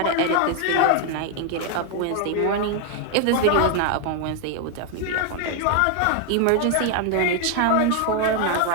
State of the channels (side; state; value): both; different; correlation 0.01